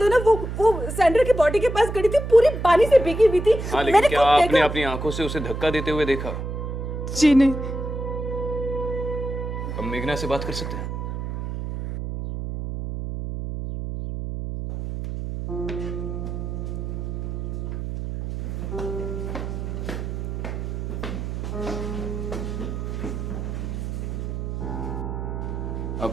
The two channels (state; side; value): noise; right; hum, 5 dB below the sound